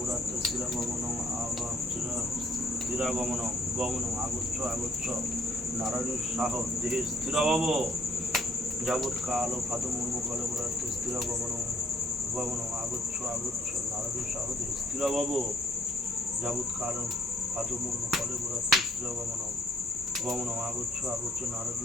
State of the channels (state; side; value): normal; both; correlation 0.63